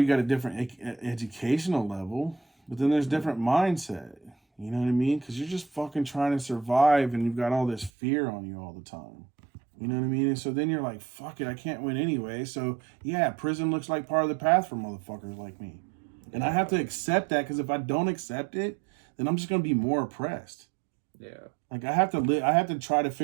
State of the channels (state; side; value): drops out; left; at 7.9 s